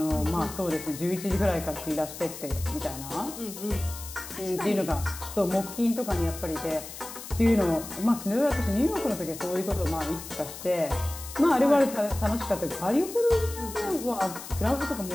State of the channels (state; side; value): noise; left; hiss, 12 dB below the sound